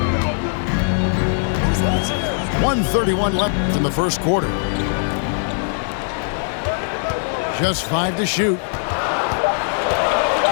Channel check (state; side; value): silent; right; 66 dB below the other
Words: .131 left in the first quarter. Just 5 to shoot.